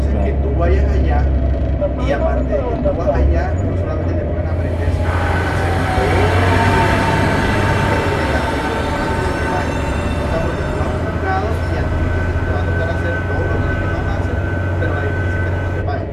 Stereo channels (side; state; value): both; identical; correlation 1.00